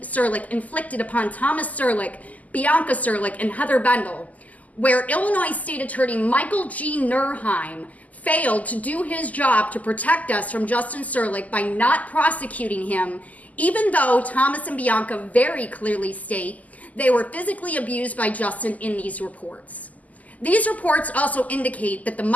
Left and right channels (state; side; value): late; right; 0.077 ms